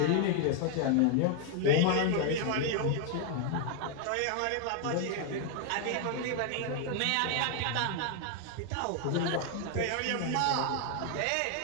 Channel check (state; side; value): different; both; correlation 0.00